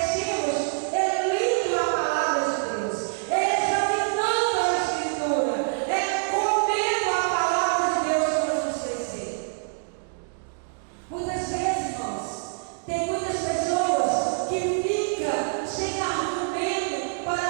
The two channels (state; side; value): silent; left; digital silence